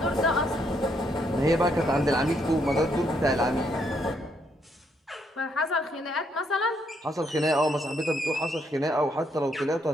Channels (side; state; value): both; normal; correlation 0.74